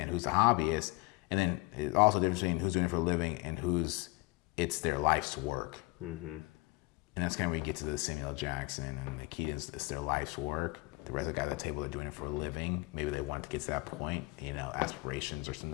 who's a hobbyist, and then it's also a difference between who's doing it for a living and it's their life's work. Mm-hmm. And that's kind of where you get to the Samuel L. Jackson and the Keatons. It's their life's work. The rest of the guys at the table are doing it for a living. Maybe they want to get to that point, aspirations or something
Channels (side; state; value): right; quieter; 24.3 dB